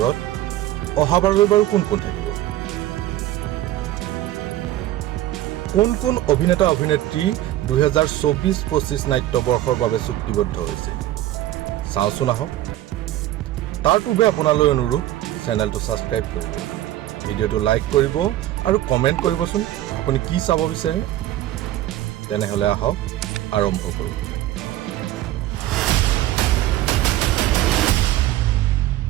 অহাবাৰলৈ বাৰু কোন কোন থাকিব কোন অভিনেতা অভিনেত্ৰী 2024-25 নাট্যবৰ্ষৰ বাবে চুক্তিবদ্ধ হৈছে চাওচোন আহক তাৰ পূৰ্বে আপোনালৈ অনুৰোধ চেনেলটো ছাবস্ক্ৰাইব কৰিব ভিডিঅ'টো লাইক কৰিব আৰু কমেণ্ট কৰিবচোন আপুনি কি চাব বিচাৰে তেনেহ'লে আহক আৰম্ভ কৰোঁ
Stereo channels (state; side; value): quieter; left; 14.4 dB